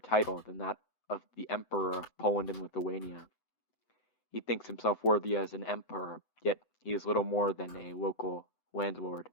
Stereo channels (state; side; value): late; right; 7.9 ms